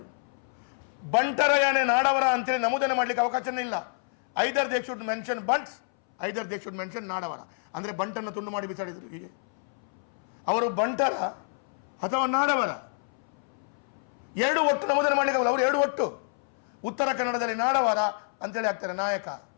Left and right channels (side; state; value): right; silent; 59 dB below the other